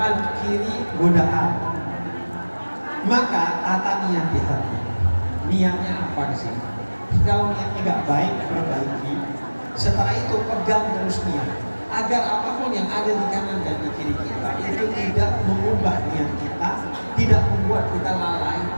kiri godaan. Maka tata niat di hati. Niatnya apa di sini? Kalau niatnya nggak baik, perbaiki. Setelah itu pegang terus niat, agar apapun yang ada di kanan dan di kiri kita itu tidak mengubah niat kita, tidak membuat kita lalai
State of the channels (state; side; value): inverted; both; correlation -1.00